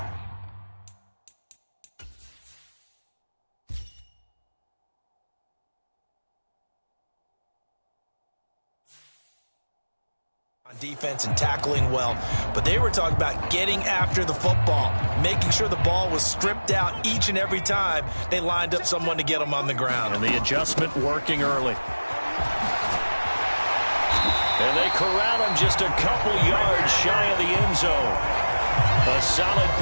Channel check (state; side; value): inverted; both; correlation -1.00